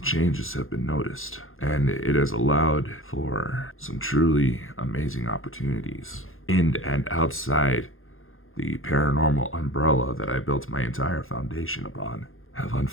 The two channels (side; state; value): right; late; 0.60 ms